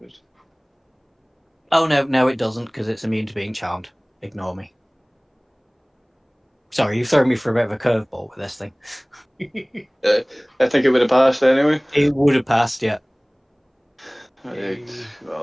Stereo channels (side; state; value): both; identical; correlation 1.00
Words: Oh, no, it doesn't, because it's immune to being charmed. Ignore me. Sorry, you've thrown me for a bit of a curveball with this thing. I think it would have passed anyway. It would have passed, yeah. Right.